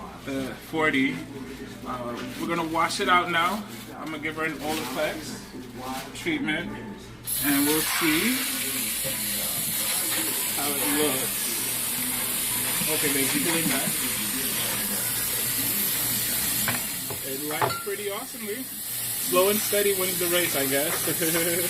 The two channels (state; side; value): identical; both; correlation 1.00